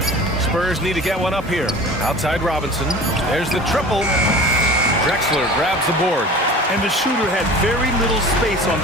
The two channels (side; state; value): both; normal; correlation 0.40